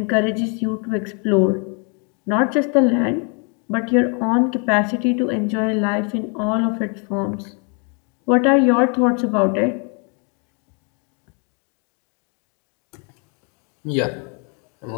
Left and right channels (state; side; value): quieter; right; 36.9 dB